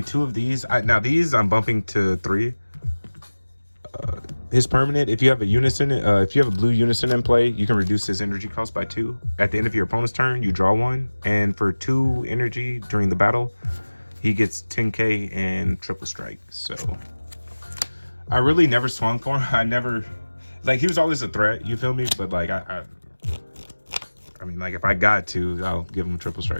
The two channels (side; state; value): both; inverted; correlation -1.00